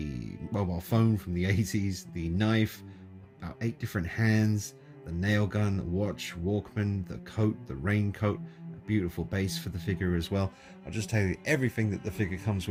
mobile phone from the 80s, the knife, about 8 different hands, the nail gun, watch, Walkman, the coat, the raincoat, a beautiful base for the figure as well. I'll just tell you everything that the figure comes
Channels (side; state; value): both; identical; correlation 1.00